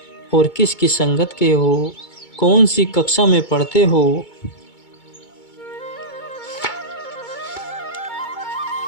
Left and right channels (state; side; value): late; right; 2.2 ms